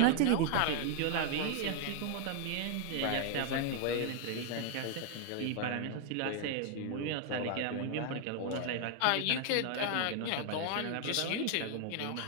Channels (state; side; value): different; both; correlation 0.00